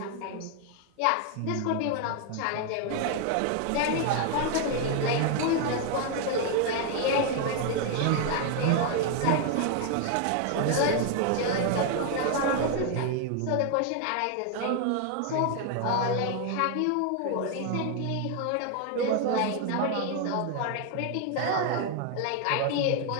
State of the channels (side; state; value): both; different; correlation 0.01